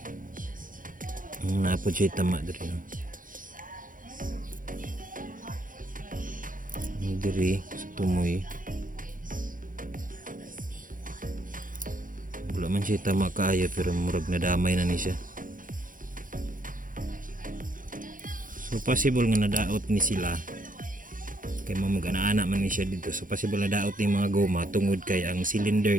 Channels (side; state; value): left; late; 0.39 ms